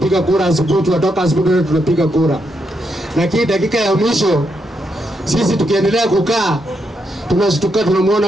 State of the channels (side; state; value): both; normal; correlation 0.80